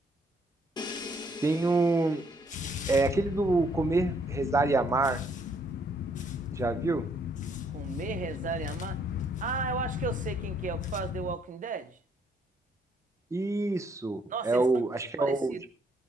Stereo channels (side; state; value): both; normal; correlation 0.69